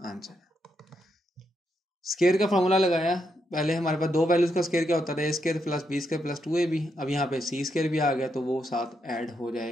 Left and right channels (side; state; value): both; normal; correlation 0.80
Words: आंसर। स्क्वायर का फॉर्मूला लगाया, पहले हमारे पास 2 वैल्यूज का स्क्वायर क्या होता था, A square plus B square plus 2ab। अब यहाँ पे सी स्क्वायर भी आ गया तो वो साथ ऐड हो